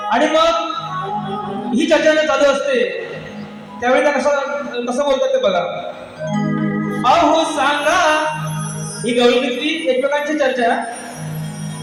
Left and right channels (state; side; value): identical; both; correlation 1.00